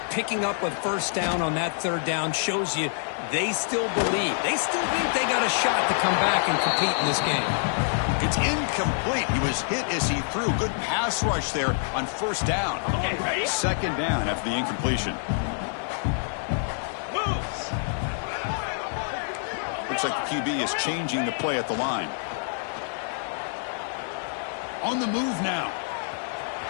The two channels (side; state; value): right; silent; digital silence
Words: Picking up a 1st down on that 3rd down shows you they still believe. They still think they got a shot to come back and compete in this game. It's incomplete. He was hit as he threw. Good pass rush there on 1st down. Okay, ready? 2nd down after the incompletion. Moves. Looks like the QB is changing the play at the line. On the move now.